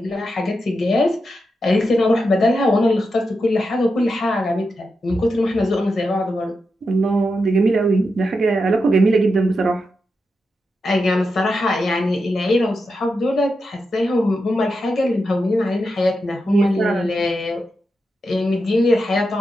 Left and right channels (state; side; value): normal; both; correlation 0.87